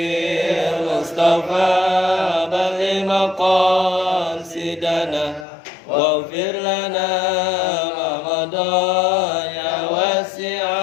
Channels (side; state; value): right; drops out; at 5.5 s